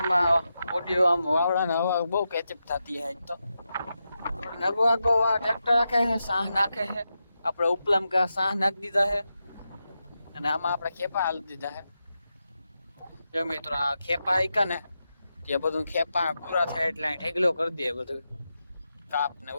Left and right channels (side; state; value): both; inverted; correlation -0.89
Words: ઓડિયો આમ વાવડાને હવા બહુ કેચઅપ થતી છે. આજ તો નગવાગો ટ્રેક્ટર રાખે છે, સાહ નાખે છે. આપણે ઉપલામ કા સાહ નાખી દીધા છે અને આમાં આપણે ખેપા હાલી દીધા છે. જો મિત્રો આ ખેપા આઈકા ને જે બધું ખેપા પૂરા થાય એટલે ઢેગલો કરી દે બધું કાપ ને